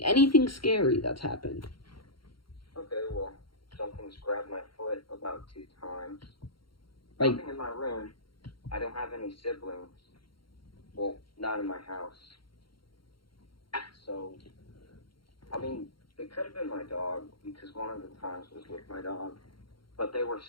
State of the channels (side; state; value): right; late; 0.73 ms